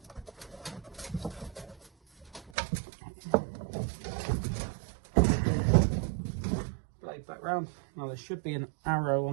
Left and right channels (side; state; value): left; drops out; at 2.5 s